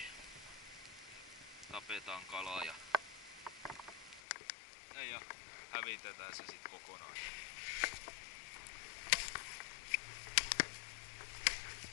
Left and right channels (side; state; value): right; drops out; at 4.2 s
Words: tapetaan kalaa ja hävitetään se sit kokonaan.